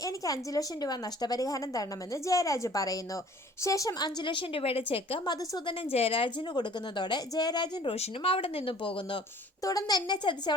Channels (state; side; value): normal; both; correlation 0.51